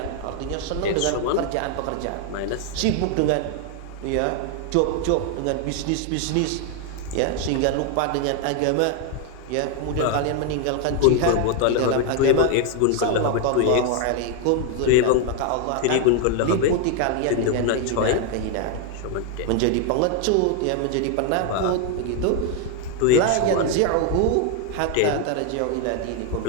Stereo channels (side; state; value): both; different; correlation 0.01